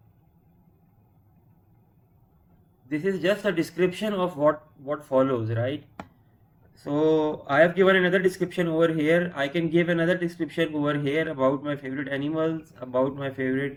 This is just a description of what follows, right? So I have given another description over here. I can give another description over here about my favorite animals, about my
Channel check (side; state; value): both; identical; correlation 1.00